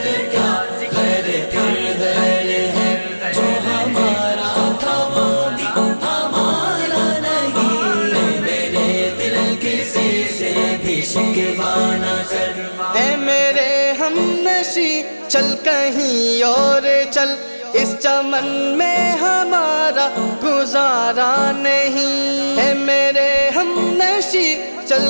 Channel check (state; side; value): inverted; both; correlation -1.00